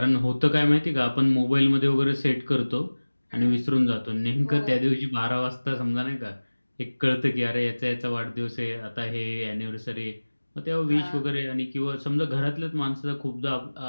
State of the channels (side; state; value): both; inverted; correlation -1.00